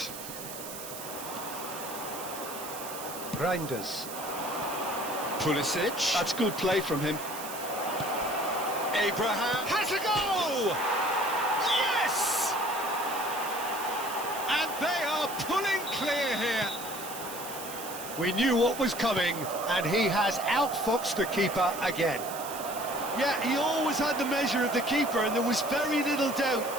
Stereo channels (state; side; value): noise; right; hiss, 10 dB below the sound